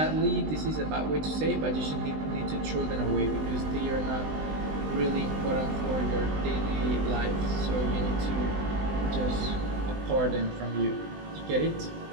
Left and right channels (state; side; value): late; left; 20 ms